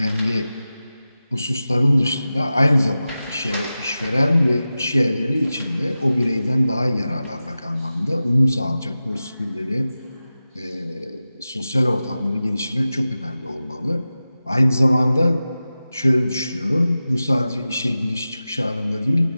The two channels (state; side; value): inverted; both; correlation -0.94